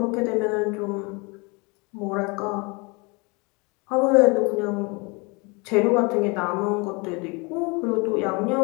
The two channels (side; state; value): right; quieter; 29.2 dB